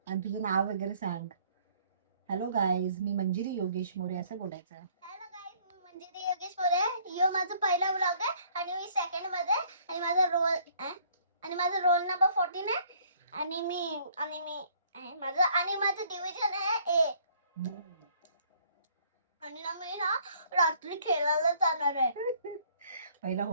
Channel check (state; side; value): inverted; both; correlation -0.60